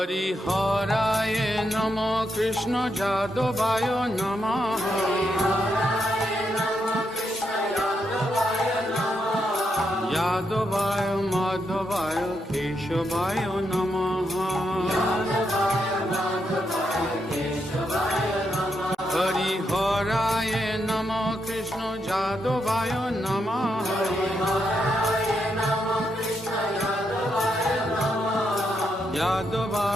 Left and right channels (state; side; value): normal; both; correlation 0.81